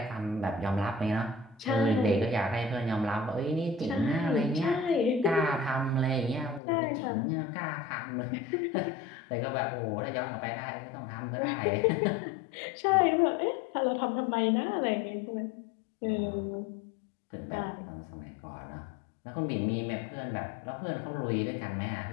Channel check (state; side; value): drops out; right; at 6.6 s